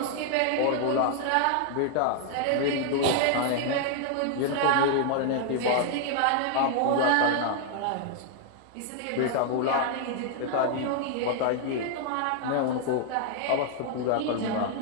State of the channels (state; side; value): different; both; correlation 0.00